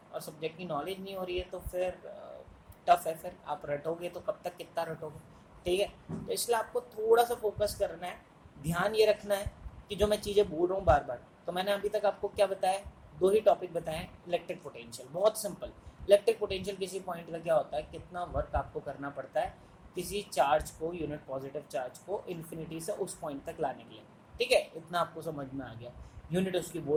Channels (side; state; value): both; identical; correlation 1.00